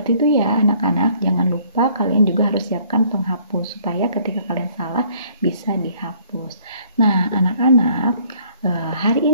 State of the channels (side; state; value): both; inverted; correlation -0.60